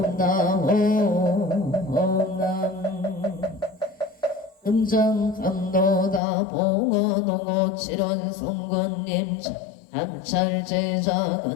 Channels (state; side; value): drops out; right; at 6.2 s